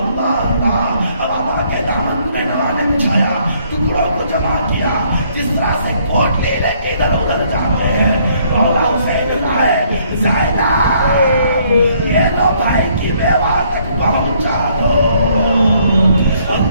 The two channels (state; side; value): inverted; both; correlation -0.66